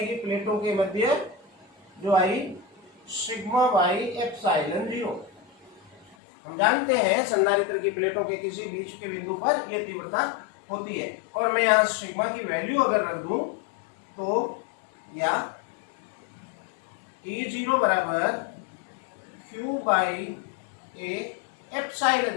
प्लेटों के मध्य? जो आई सिग्मा बाई एप्सिलॉन 0। हम जानते हैं संधारित्र की प्लेटों के किसी बीच के बिंदु पर यह तीव्रता होती है। और मैं यहाँ सिग्मा की वैल्यू अगर रख दूं तो या E0 बराबर Q बाई ए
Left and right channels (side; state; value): right; drops out; at 6.2 s